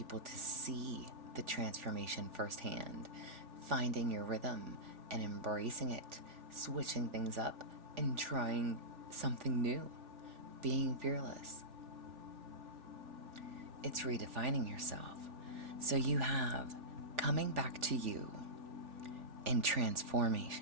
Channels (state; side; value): late; left; 3.4 ms